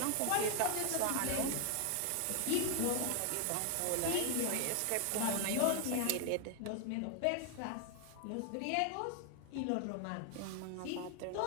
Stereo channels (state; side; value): different; both; correlation 0.00